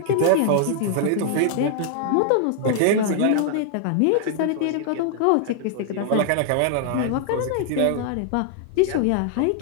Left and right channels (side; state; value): both; different; correlation 0.00